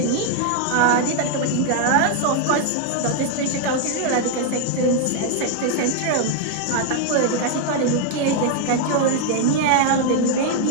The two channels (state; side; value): different; both; correlation 0.00